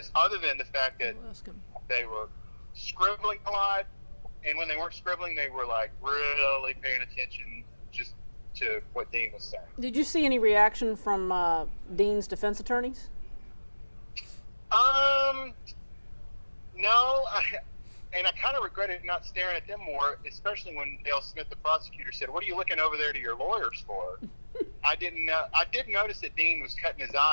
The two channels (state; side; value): inverted; both; correlation -1.00